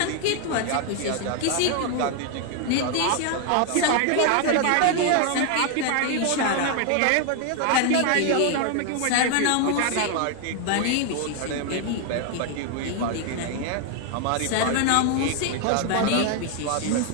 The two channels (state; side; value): different; both; correlation 0.01